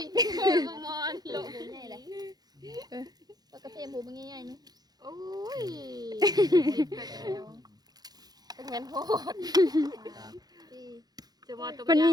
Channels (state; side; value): late; left; 0.19 ms